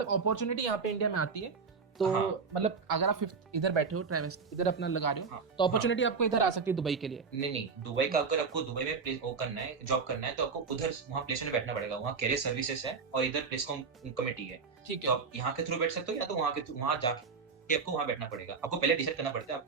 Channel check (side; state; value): left; quieter; 5.2 dB